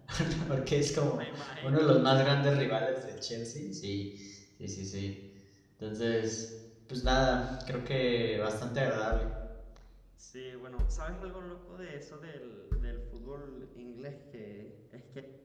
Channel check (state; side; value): identical; both; correlation 1.00